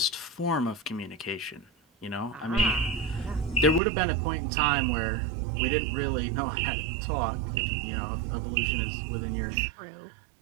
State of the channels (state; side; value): drops out; left; at 3.8 s